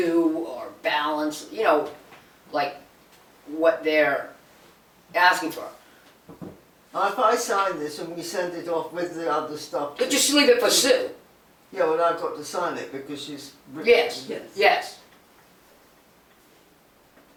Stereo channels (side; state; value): both; identical; correlation 1.00